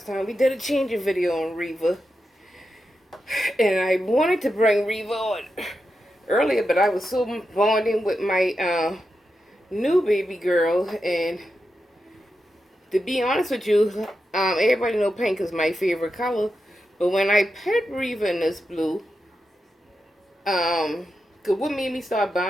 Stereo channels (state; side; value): normal; both; correlation 0.88